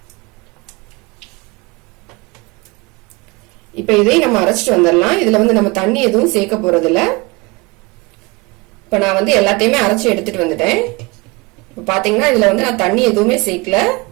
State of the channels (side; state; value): left; quieter; 25.5 dB